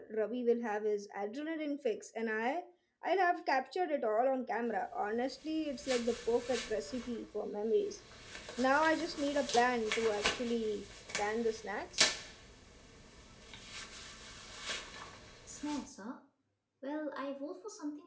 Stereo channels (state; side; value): identical; both; correlation 1.00